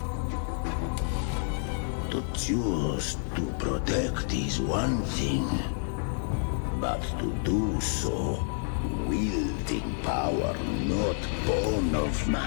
To choose to protect is one thing, but to do so wielding power not born of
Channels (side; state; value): right; silent; 59 dB below the other